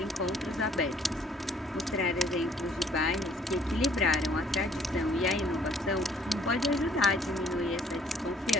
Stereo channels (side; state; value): both; normal; correlation 0.61